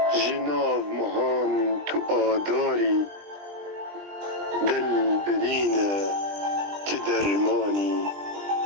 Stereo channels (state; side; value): late; left; 20 ms